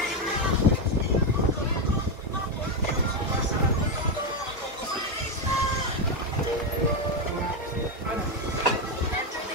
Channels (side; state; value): both; normal; correlation 0.08